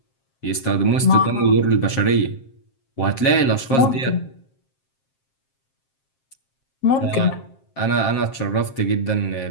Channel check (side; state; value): right; late; 7.5 ms